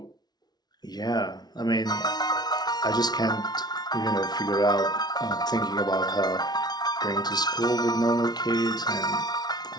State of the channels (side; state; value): right; late; 0.19 ms